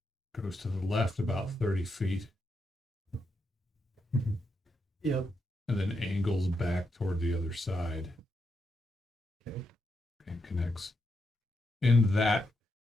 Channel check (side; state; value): both; normal; correlation 0.83